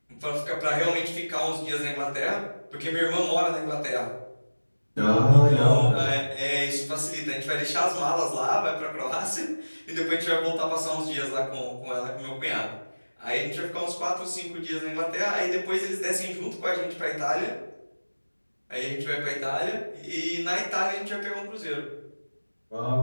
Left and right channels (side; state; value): both; inverted; correlation -1.00